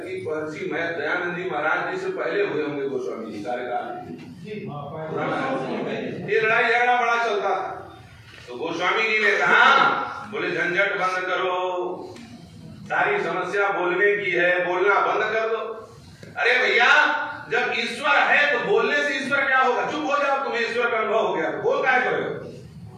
महर्षि दयानंद जी महाराज जी से पहले हुए होंगे गोस्वामी जी कार्यकाल। ये लड़ाई झगड़ा बड़ा चलता था, तो गोस्वामी जी ने कहा बोले झंझट बंद करो, सारी समस्या बोलने की है, बोलना बंद कर दो। अरे भैया जब ईश्वर है तो बोलने से ईश्वर क्या होगा? चुप हो जाओ, तुम्हें ईश्वर का अनुभव हो गया, बोल क्या करोगे?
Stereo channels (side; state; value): both; identical; correlation 1.00